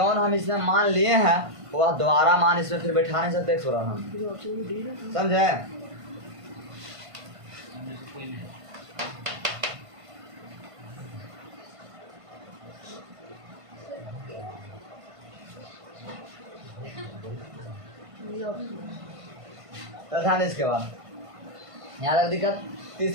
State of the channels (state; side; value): late; left; 1.5 ms